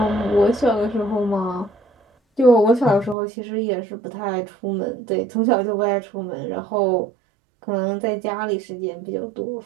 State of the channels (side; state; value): left; drops out; at 3.2 s